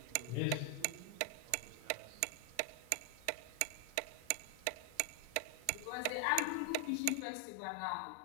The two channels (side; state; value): both; different; correlation 0.00